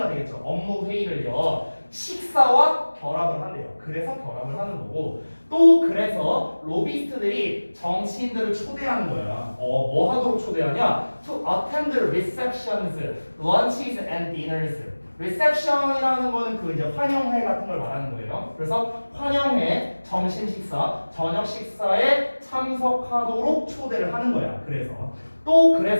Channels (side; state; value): both; inverted; correlation -1.00